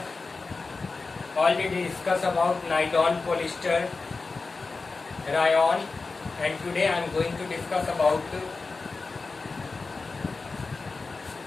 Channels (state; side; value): quieter; right; 4.0 dB